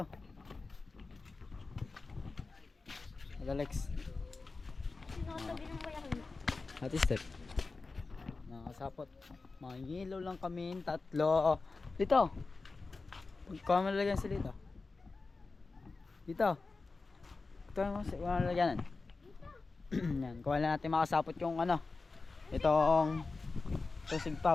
Hello Lex. Sinatabi ng bayan. Ate Step. Nakasapot. Mangilaw lang kami, tatlo. Dito. Kuha mo lalagyan sila dito. Dito. Ito mo sa lalagyanan. Yan, kuha lang natin makasapot yung ano. Itong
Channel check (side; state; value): right; quieter; 3.9 dB